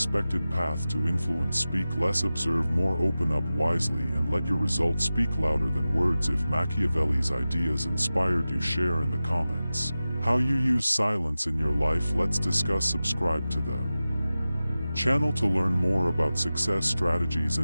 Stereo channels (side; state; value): both; inverted; correlation -0.95